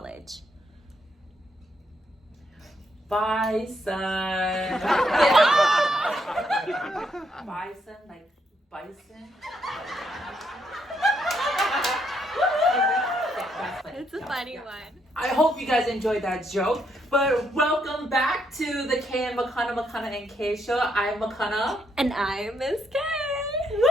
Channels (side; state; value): both; normal; correlation 0.76